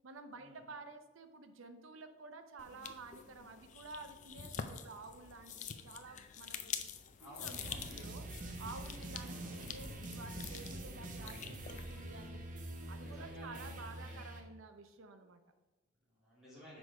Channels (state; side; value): normal; both; correlation 0.31